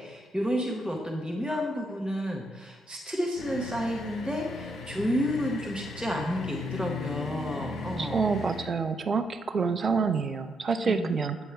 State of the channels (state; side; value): normal; both; correlation 0.78